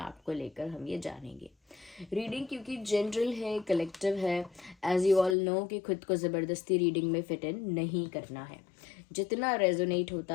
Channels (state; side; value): drops out; right; at 5.4 s